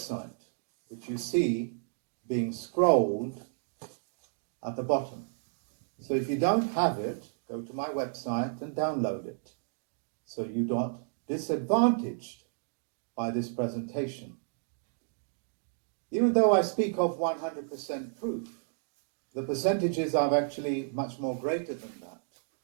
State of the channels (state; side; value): silent; left; digital silence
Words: which you see being scrolled at the bottom. So if you don't have it, go to my website and download it, so you're not disadvantaged by this presentation. Even though I speak of 100% proof, the percentages are actually much more greater than that,